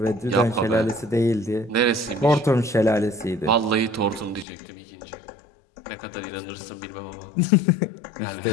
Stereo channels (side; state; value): right; drops out; at 4.5 s